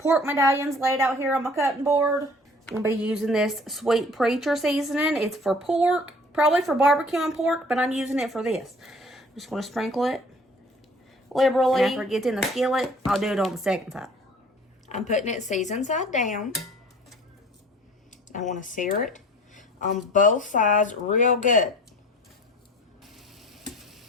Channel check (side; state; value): both; normal; correlation 0.49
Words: medallions laid out here on my cutting board. I'm going to be using this Sweet Preacher seasoning. It's for pork, probably for barbecue and pork, but I'm using it for this. I'm just going to sprinkle it liberally. And after it gets in the skillet, I'll do it on the second side. I'm putting it seasoned side down. I want to sear it on both sides real good.